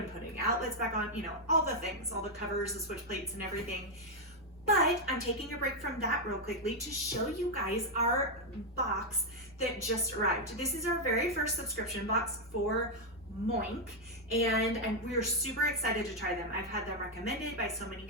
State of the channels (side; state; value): both; normal; correlation 0.01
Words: putting outlets back on, you know, all the things, all the covers, the switch plates and everything. But I'm taking a break from that real quickly to show you guys our box that just arrived. This is our very first subscription box for Moink, and we're super excited to try them. I've had them recommended by so many